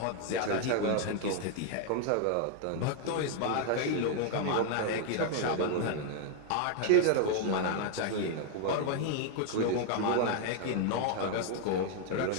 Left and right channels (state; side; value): different; both; correlation 0.00